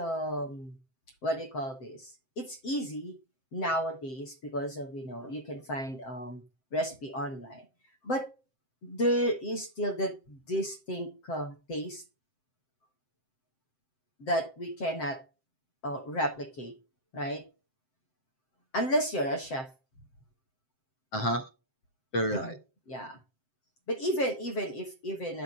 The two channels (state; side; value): late; right; 7.6 ms